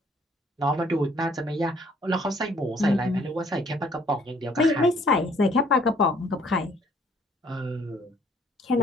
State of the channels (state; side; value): normal; both; correlation 0.62